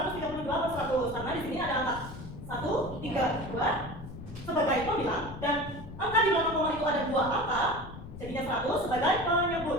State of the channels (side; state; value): left; noise; rumble, 12 dB below the sound